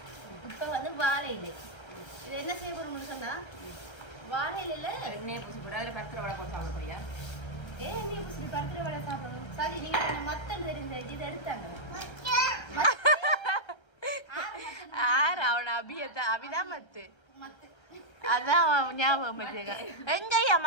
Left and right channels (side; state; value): right; late; 1.3 ms